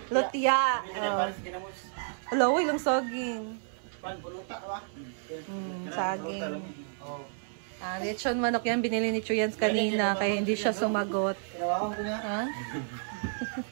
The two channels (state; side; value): silent; left; 55 dB below the other